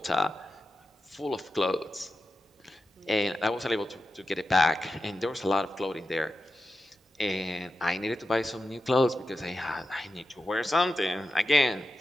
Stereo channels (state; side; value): normal; both; correlation 0.91